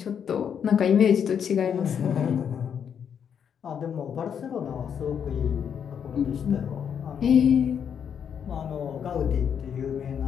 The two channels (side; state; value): right; quieter; 7.9 dB